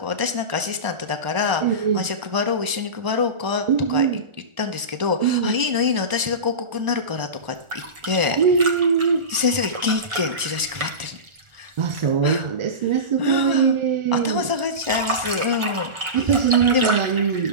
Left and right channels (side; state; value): left; late; 1.4 ms